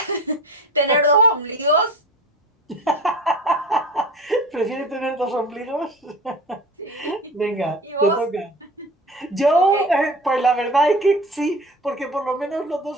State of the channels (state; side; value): normal; both; correlation 0.36